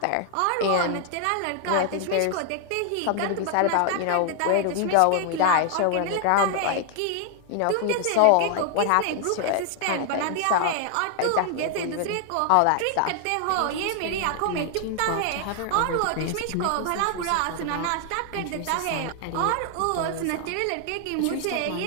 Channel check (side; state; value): both; different; correlation 0.00